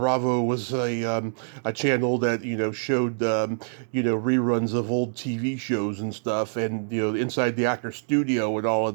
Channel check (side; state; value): left; silent; digital silence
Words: was a channel that showed reruns of old TV shows and stuff, and inside the actor studio and all